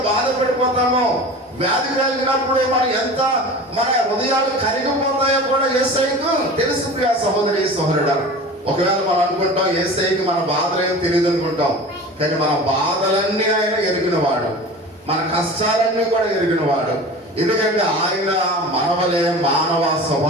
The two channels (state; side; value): normal; both; correlation 0.36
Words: బాధపడిపోతామో, వ్యాధి కలిగినప్పుడు మన హృదయాలు కరిగిపోతాయో కూడా యేసయ్యకు తెలుసు ప్రియా సహోదరి సహోదరుడా. ఒకవేళ మనం అనుకుంటాం యేసయ్యకి మన బాధలు ఏం తెలియదు అనుకుంటాం, కానీ మన బాధలన్నీ ఆయన ఎరిగినవాడు, మన కష్టాలన్నీ కూడా ఎరిగినవాడు. ఎందుకంటే ఆయన మనవలే మానవ